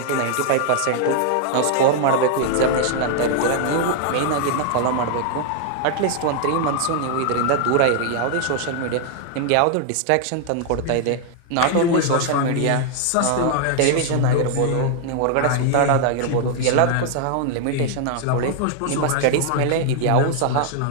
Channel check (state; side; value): different; both; correlation 0.00